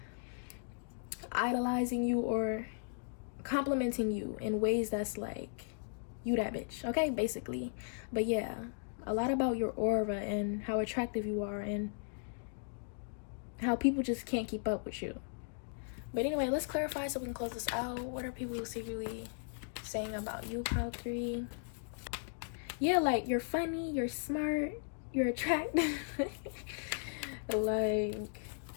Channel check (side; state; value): right; silent; digital silence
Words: idolizing you or complimenting you in ways that's like, you that bitch, okay, basically. But yeah, a lot about your aura and how attractive you are and how people just can't keep up with you. But anyway, let's clarify so we can close this out. What are people secretly saying about you, pile 3? Yeah, like, you're funny, you're smart, you're attractive. Like,